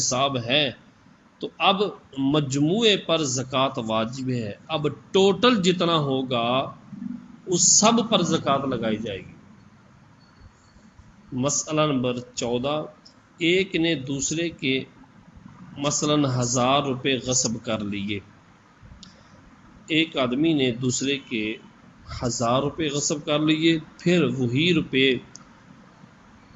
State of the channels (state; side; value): identical; both; correlation 1.00